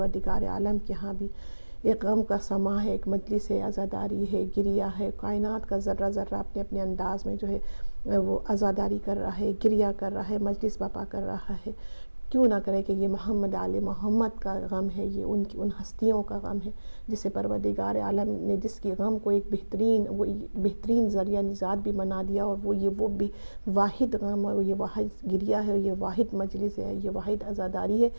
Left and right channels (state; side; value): inverted; both; correlation -1.00